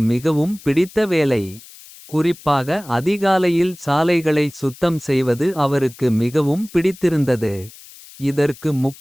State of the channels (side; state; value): left; noise; hiss, 20 dB below the sound